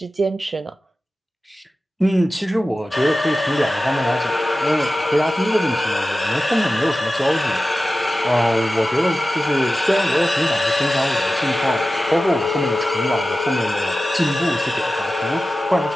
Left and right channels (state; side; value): normal; both; correlation 0.95